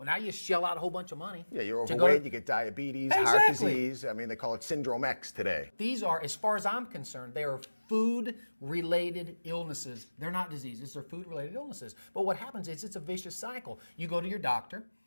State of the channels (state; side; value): inverted; both; correlation -1.00